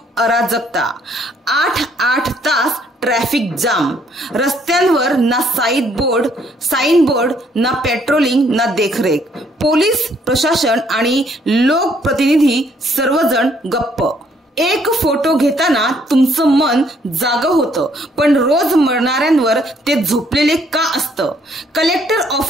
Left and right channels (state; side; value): normal; both; correlation 0.67